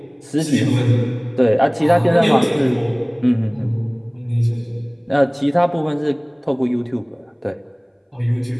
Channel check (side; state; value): both; identical; correlation 1.00